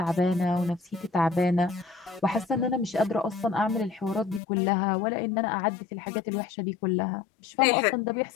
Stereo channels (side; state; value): right; drops out; at 4.4 s